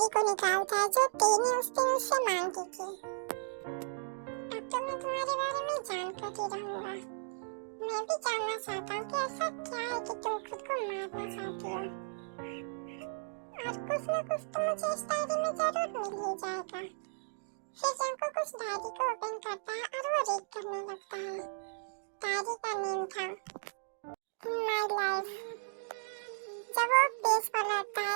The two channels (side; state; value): left; silent; digital silence